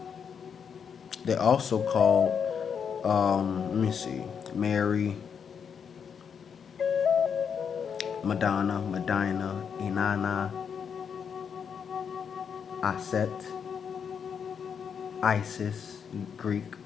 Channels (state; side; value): quieter; right; 7.0 dB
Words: They also call, let me see, Mary, Madonna, Medina, Inanna, Aset, Isis, Greek,